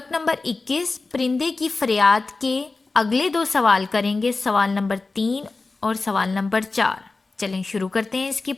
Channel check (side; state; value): right; quieter; 3.7 dB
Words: नंबर 21 परिंदे की फरियाद के अगले दो सवाल करेंगे, सवाल नंबर 3 और सवाल नंबर 4। चलें शुरू करते हैं, इसकी